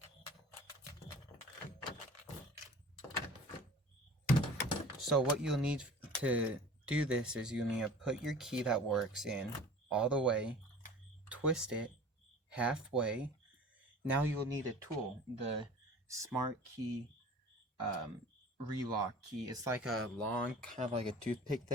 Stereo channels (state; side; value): normal; both; correlation 0.43